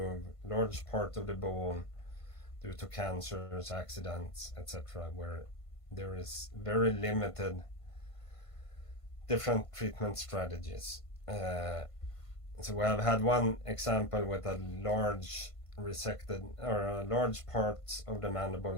large part of the bone due to cancers, accidents, etc., where there is very limited different treatment strategies. So we have had one example with a large resected, or a large part of the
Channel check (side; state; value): right; late; 1.5 ms